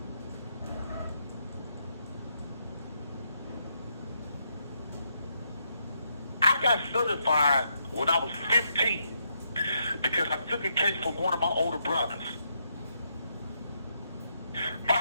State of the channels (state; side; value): inverted; both; correlation -0.78